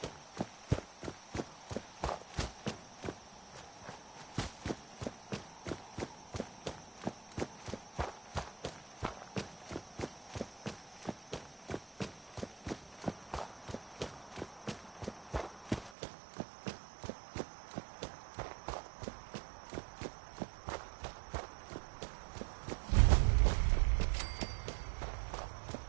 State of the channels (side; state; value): left; drops out; at 15.9 s